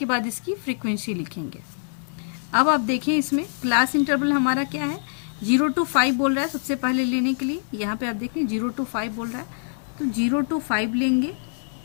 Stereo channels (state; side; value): silent; right; digital silence